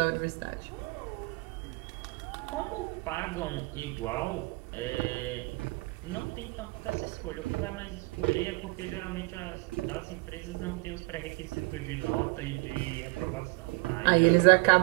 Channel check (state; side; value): quieter; left; 26.0 dB